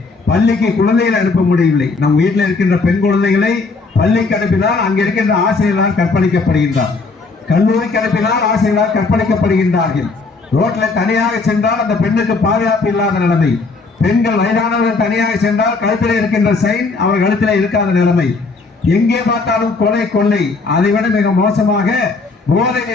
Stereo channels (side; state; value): right; quieter; 4.0 dB